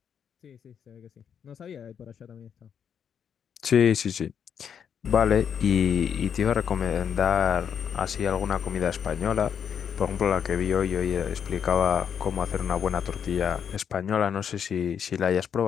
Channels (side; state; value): right; quieter; 7.8 dB